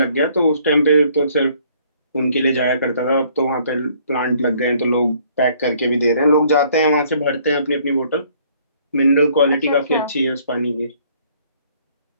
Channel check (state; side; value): inverted; both; correlation -0.61